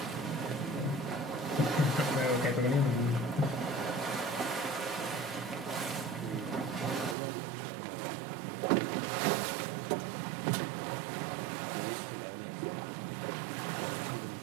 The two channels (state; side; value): drops out; left; at 7.2 s